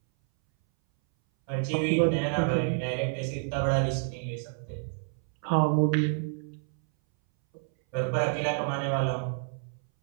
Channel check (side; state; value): left; silent; 59 dB below the other